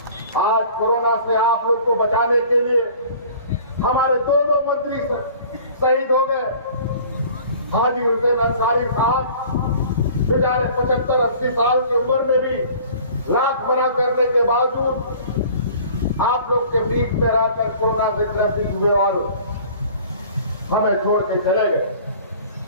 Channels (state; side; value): inverted; both; correlation -0.48